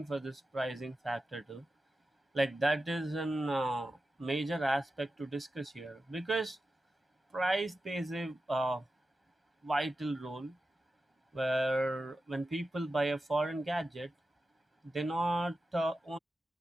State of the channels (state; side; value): normal; both; correlation 0.92